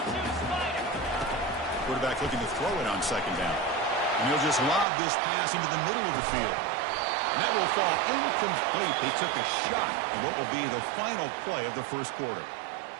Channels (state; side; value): drops out; left; at 4.9 s